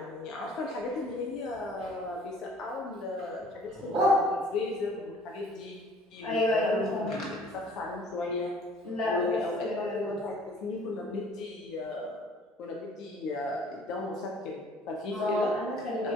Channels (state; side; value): normal; both; correlation 0.53